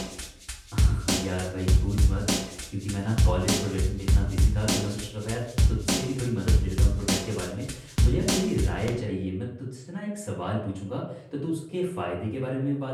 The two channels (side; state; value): both; identical; correlation 1.00